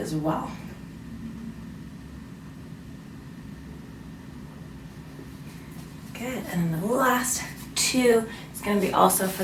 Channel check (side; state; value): both; identical; correlation 1.00